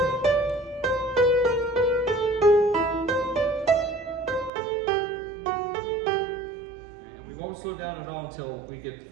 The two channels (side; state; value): left; drops out; at 4.5 s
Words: and we won't slow down at all until we get